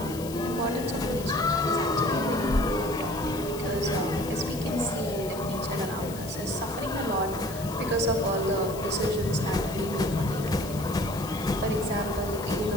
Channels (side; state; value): left; noise; hiss, 14 dB below the sound